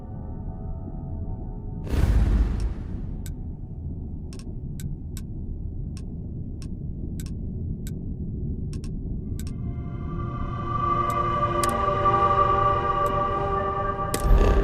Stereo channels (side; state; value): both; identical; correlation 1.00